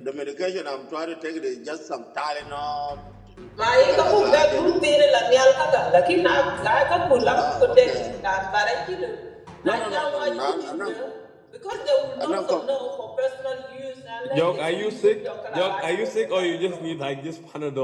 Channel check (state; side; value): identical; both; correlation 1.00